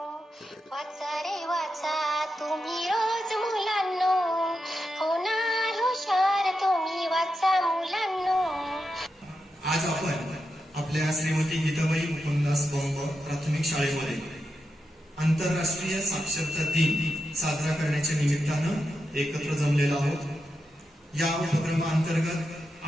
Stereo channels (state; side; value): normal; both; correlation 0.87